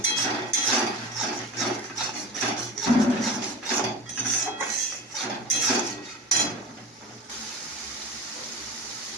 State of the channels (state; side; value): normal; both; correlation 0.32